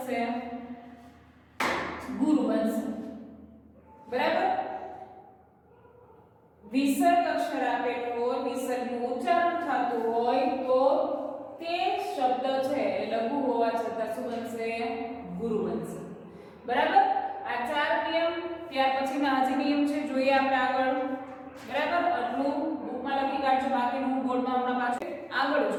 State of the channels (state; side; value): identical; both; correlation 1.00